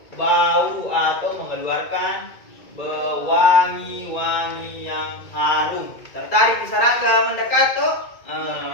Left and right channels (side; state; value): right; late; 2.2 ms